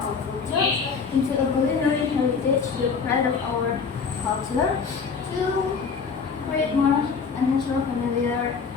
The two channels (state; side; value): quieter; right; 5.5 dB